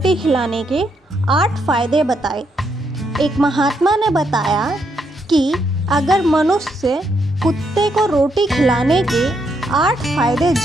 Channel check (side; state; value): both; normal; correlation 0.77